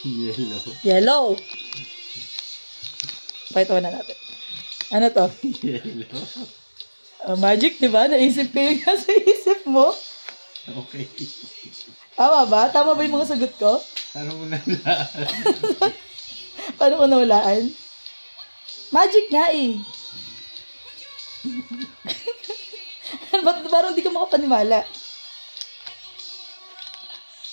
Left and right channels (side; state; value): both; inverted; correlation -1.00